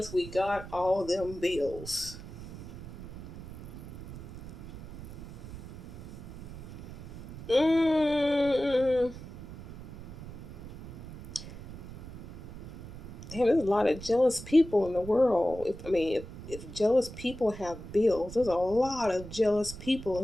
we got all them bills. Mm. Damn, there's a lot of jealous people in the world. If jealous people have bills, there's a lot of jealous people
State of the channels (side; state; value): right; noise; rumble, 13 dB below the sound